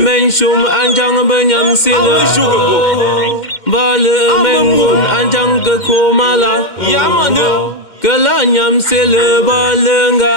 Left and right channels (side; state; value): right; late; 2.1 ms